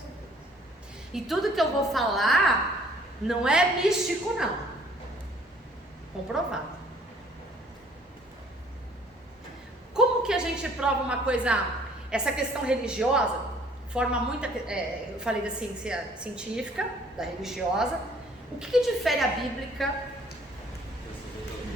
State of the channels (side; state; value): both; normal; correlation 0.58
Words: isso. E tudo que eu vou falar não é místico, não. Comprovado. Como que a gente prova uma coisa, essa questão religiosa, forma muita, eu falei da ciência científica, da religiosa, o que difere a bíblica